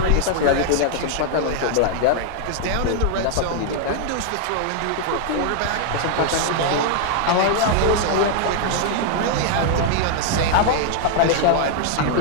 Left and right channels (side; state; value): both; different; correlation 0.00